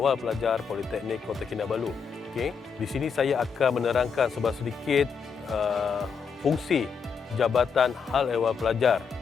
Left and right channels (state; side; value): quieter; right; 6.1 dB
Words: Pelajar Politeknik Kota Kinabalu. Okey, di sini saya akan menerangkan sedikit fungsi Jabatan Al-Ehwal Pelajar.